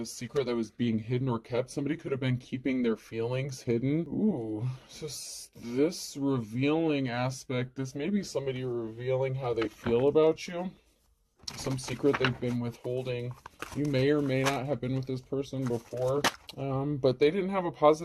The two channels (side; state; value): both; identical; correlation 1.00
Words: secret that was being hidden or kept. Somebody could have been keeping their feelings hidden. Ooh, so this revealing aspect, this may be somebody revealing how they feel about you. Some secret they've been withholding. You may or may not have been with this person before, but they didn't have a